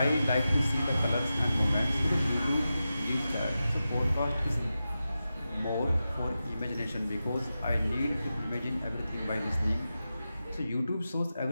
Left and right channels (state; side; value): inverted; both; correlation -0.92